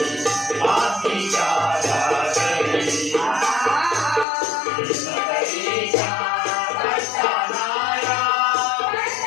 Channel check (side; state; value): right; drops out; at 4.2 s